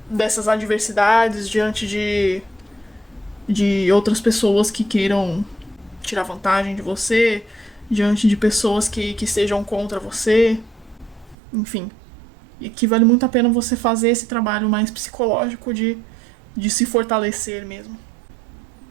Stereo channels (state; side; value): drops out; left; at 11.4 s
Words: dessas adversidades, diante de outras pessoas que queiram tirar vantagem de você, diante de pessoas que estejam contra você, enfim. E que vale muito a pena você fazer esse trabalho mais psicológico de se fortalecer mesmo.